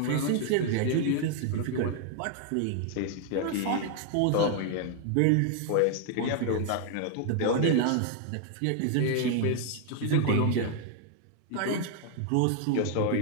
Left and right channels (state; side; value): different; both; correlation 0.00